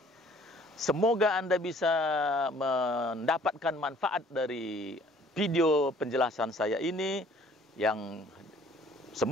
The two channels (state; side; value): normal; both; correlation 0.56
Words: Semoga Anda bisa mendapatkan manfaat dari video penjelasan saya ini yang